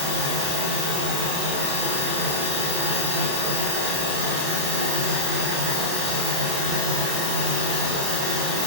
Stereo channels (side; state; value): left; late; 30 ms